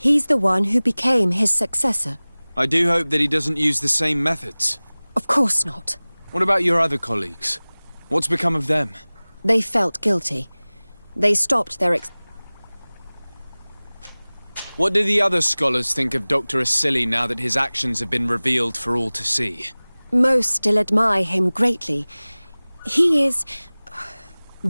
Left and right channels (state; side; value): inverted; both; correlation -1.00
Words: the one who became his successor. I do hope that he doesn't use the same methods. Of course not. What about your other colleagues? What's become of them? They felt guilty. They stopped their What do the other scholars think of Dr. Asili now that his actions have been revealed for all to see? Most still admire him greatly. He